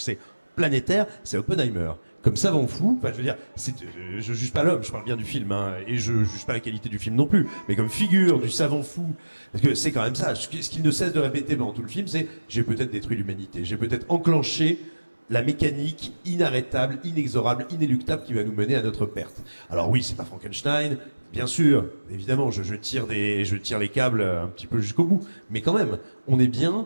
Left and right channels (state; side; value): inverted; both; correlation -1.00